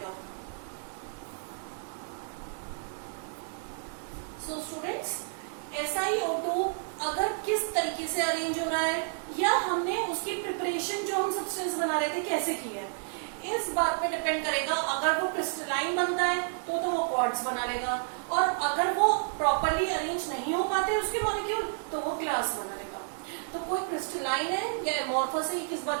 सो स्टूडेंट्स, SiO2 अगर किस तरीके से अरेंज हो रहा है, या हमने उसकी प्रिपरेशन जो हम सब्सटेंस बना रहे थे कैसे की है, इस बात पे डिपेंड करेगा। अगर वो क्रिस्टलाइन बनता है तो वो क्वार्ट्ज बना लेगा, और अगर वो प्रॉपरली अरेंज नहीं हो पाते उसके मॉलिक्यूल तो वो ग्लास बना लेगा। तो कोई क्रिस्टलाइन है या एमोर्फस है, किस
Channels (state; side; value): silent; left; digital silence